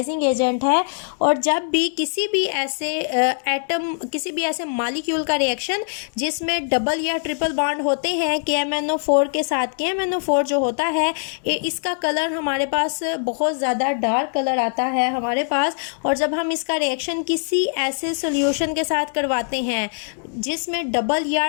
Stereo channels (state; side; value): silent; right; digital silence